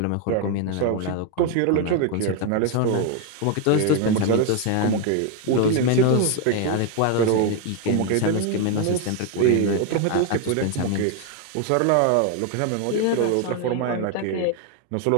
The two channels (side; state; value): both; different; correlation 0.01